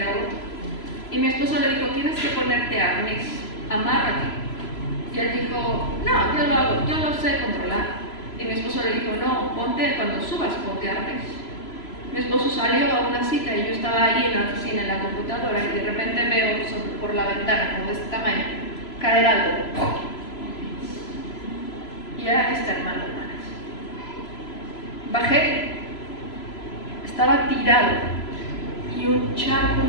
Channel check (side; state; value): right; late; 3.0 ms